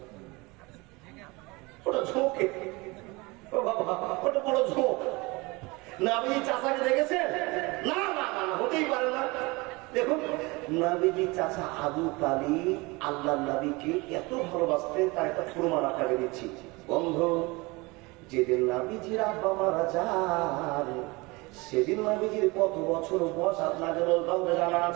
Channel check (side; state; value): left; quieter; 24.6 dB